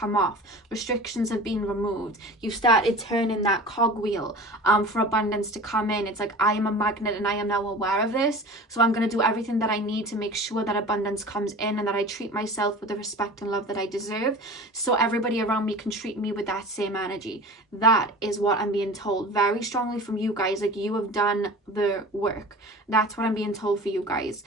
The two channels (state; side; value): normal; both; correlation 0.37